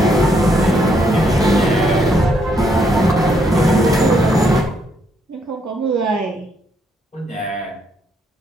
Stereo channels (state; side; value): normal; both; correlation 0.73